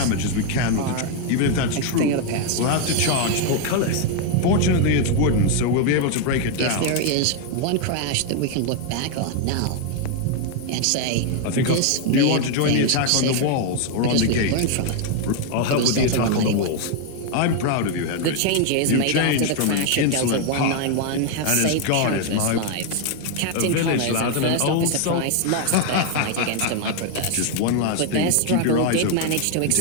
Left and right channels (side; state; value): both; different; correlation 0.01